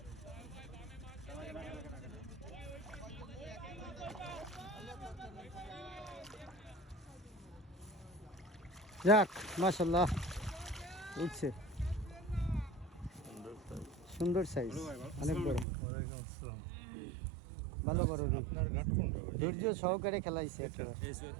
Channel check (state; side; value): drops out; left; at 15.7 s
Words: যাক মাশাআল্লাহ উঠছে, সুন্দর সাইজ, অনেক বড়। ভালো বড় রুই। আপনার ঘাট কোনটা ভাই? ধৈর্য সহকারে খেলাইছে একেবারে।